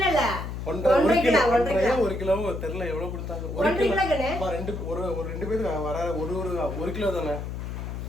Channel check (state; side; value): noise; left; hum, 6 dB below the sound